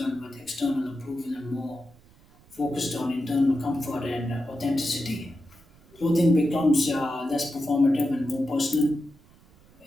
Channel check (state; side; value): noise; right; rumble, 27 dB below the sound